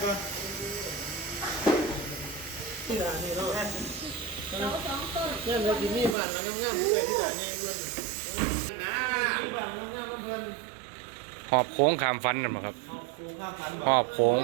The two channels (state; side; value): drops out; left; at 6.2 s